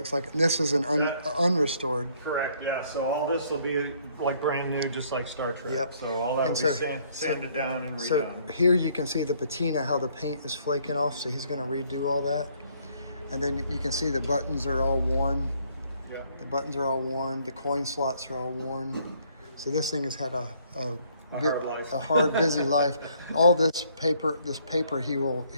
like, this is an unrestored. Correct, yeah. So all this will be like brand new, just like Star Trek. Yep. So all that will be sanded down and redone. So here you can see the patina, how the paint is flaking off. So he's going to redo all that. And then you can see the buttons are all worn. Yep. The buttons are all worn. The coin slots are all worn. So this thing has had a hard life. A hard, busy life. All this paper he will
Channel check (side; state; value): both; inverted; correlation -0.65